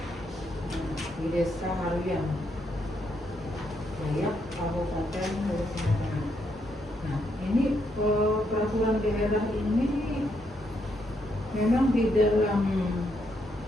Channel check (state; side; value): normal; both; correlation 0.77